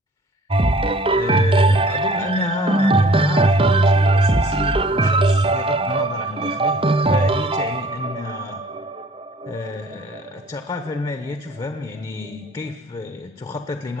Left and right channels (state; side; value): normal; both; correlation 0.53